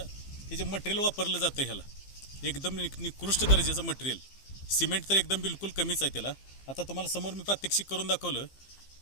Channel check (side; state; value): right; late; 15 ms